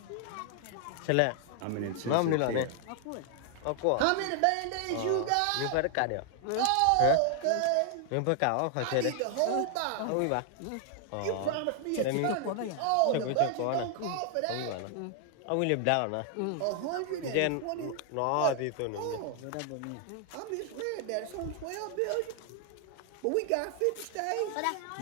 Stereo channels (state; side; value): different; both; correlation 0.00